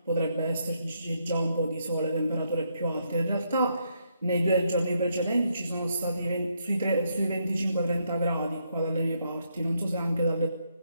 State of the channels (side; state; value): both; inverted; correlation -0.76